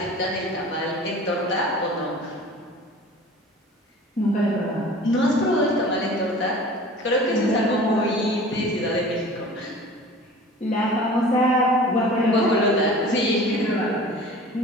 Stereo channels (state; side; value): normal; both; correlation 0.42